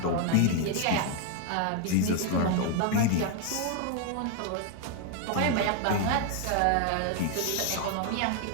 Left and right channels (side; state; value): both; different; correlation 0.01